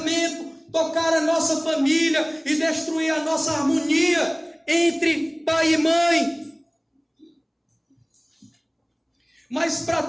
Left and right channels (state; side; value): identical; both; correlation 1.00